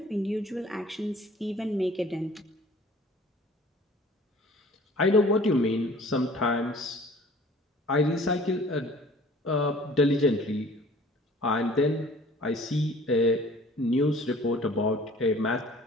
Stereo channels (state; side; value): normal; both; correlation 0.50